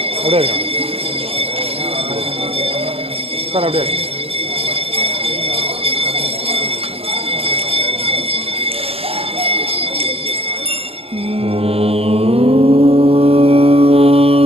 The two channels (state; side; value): late; left; 0.28 ms